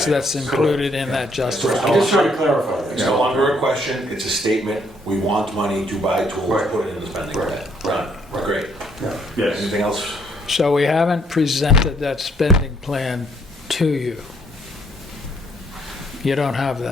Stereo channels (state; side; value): normal; both; correlation 0.67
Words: that's items. included in that I'm justification. just trying to clarify that. It's no longer a question, it's a statement. We want money to buy tools, Right. put it in the spending plan. Right. Done. Great. Yeah. Yes. Anything else? So we haven't presented that spending plan to you. You don't have